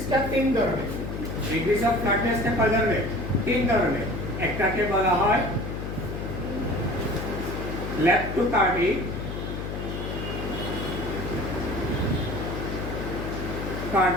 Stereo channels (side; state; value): left; noise; hum, 5 dB below the sound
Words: তিন ধরনের, ডিগ্রিজ অফ ফ্ল্যাটনেসটা কয় ধরনের? তিন ধরনের। একটাকে বলা হয় ল্যাপ্টোকার্ডিক,